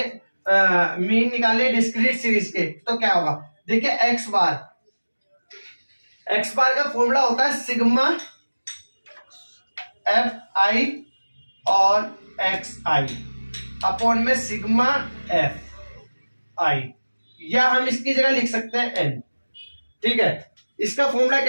मीन निकाले डिस्क्रीट सीरीज के, तो क्या होगा? देखिए, एक्स बार का फॉर्मूला होता है सिग्मा एफ आई और एक्स आई अपॉन में सिग्मा एफ आई, या हम इसकी जगह लिख सकते हैं एन। ठीक है, इसका फॉर्मूला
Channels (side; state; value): both; inverted; correlation -1.00